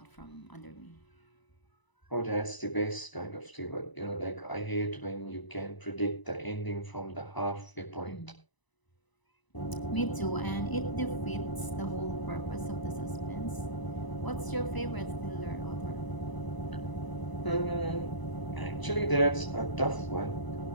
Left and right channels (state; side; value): late; right; 1.0 ms